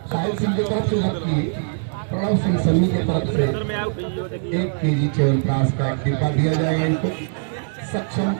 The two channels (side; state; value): left; silent; digital silence